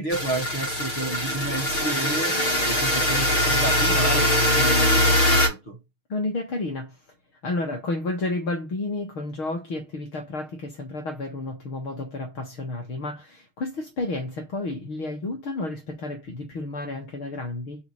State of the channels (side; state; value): right; late; 6.5 ms